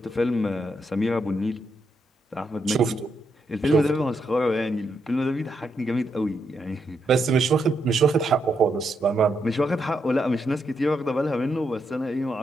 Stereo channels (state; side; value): normal; both; correlation 0.80